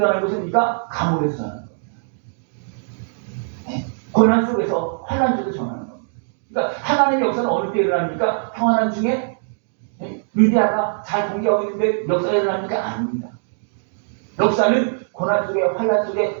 것은 우리가 감옥에서 전하는 겁니다. 고난 속에서 환난 속에서 전하는 겁니다. 그러니까 하나님의 역사는 어느 때 일어납니까? 평안한 중에 루디아가 잘 공개하고 있는데 역사가 일어납니까? 아닙니다. 역사는 고난 속에 환난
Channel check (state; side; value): silent; left; digital silence